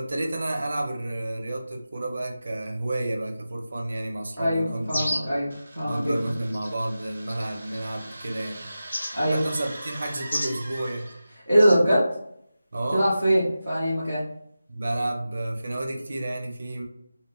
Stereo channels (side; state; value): both; inverted; correlation -0.94